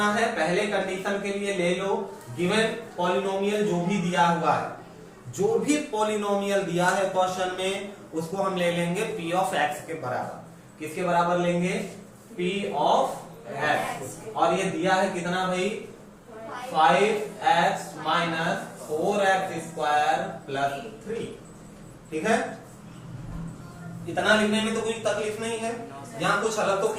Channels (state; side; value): identical; both; correlation 1.00